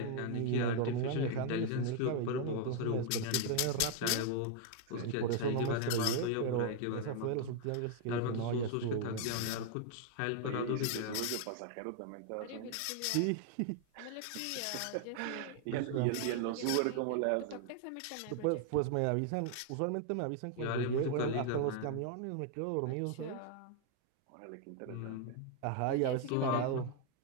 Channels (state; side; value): different; both; correlation 0.00